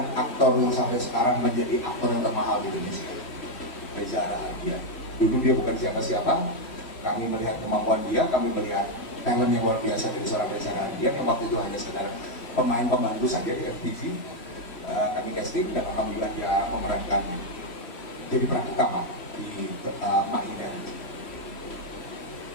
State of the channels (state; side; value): late; right; 3.1 ms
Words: aktor yang sampai sekarang menjadi aktor yang termahal di Indonesia, Reza Radian. Dulu dia bukan siapa-siapa, kami melihat kemampuan dia, kami melihat talent yang luar biasa dari seorang Reza Radian yang waktu itu hanya sekedar pemain pembantu saja di FTV. Kami casting dan alhamdulillah dia memerankan jadi peran utama di Mak Ina.